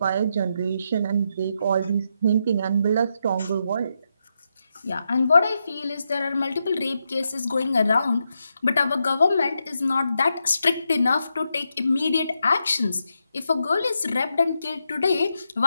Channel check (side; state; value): both; inverted; correlation -0.83